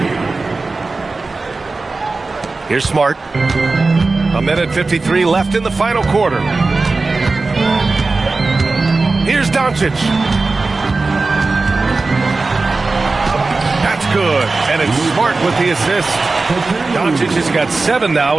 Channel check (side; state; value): left; quieter; 3.7 dB